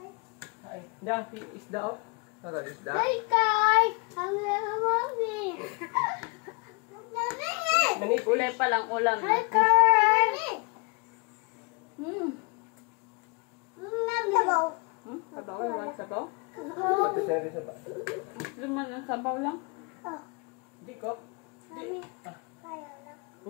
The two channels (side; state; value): right; quieter; 32.4 dB